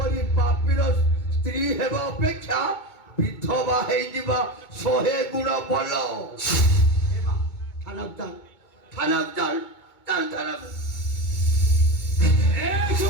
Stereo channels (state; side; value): late; right; 2.2 ms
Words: ପାପୀର ସ୍ତ୍ରୀ ହେବା ଅପେକ୍ଷା ବିଧବା ହେଇଯିବା 100 ଗୁଣ ଭଲ ଥାନାକୁ ଏ